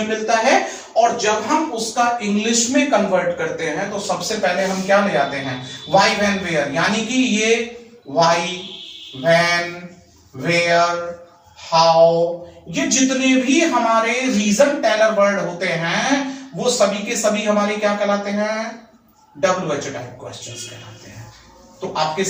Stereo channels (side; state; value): both; identical; correlation 1.00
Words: मिलता है। और जब हम उसका इंग्लिश में कन्वर्ट करते हैं तो सबसे पहले हम क्या ले आते हैं? व्हाई, व्हेन, वेयर, यानी कि ये व्हाई, व्हेन, वेयर, हाउ, ये जितने भी हमारे रीजन टेलर वर्ड होते हैं वो सभी के सभी हमारे क्या कहलाते हैं? WH टाइप क्वेश्चंस कहलाते हैं। तो आपके